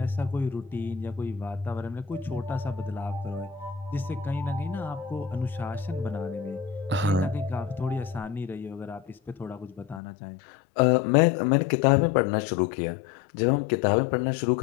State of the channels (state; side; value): drops out; right; at 10.0 s